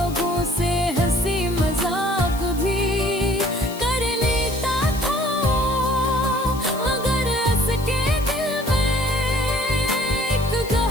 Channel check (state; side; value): noise; left; hiss, 16 dB below the sound